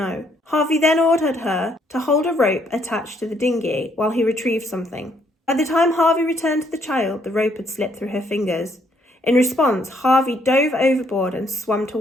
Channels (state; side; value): normal; both; correlation 0.69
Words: Harvey then ordered her to hold a rope attached to the dinghy while he retrieved something. By the time Harvey returned to the child, the rope had slipped through her fingers. In response, Harvey dove overboard and swam